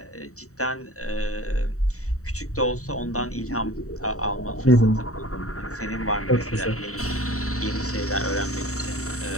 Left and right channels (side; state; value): right; late; 0.64 ms